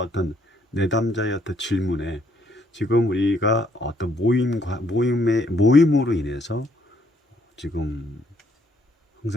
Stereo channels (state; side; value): normal; both; correlation 0.69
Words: 내담자의 어떤 질문에, 지금 우리가 어떤 모임으로 인해서 지금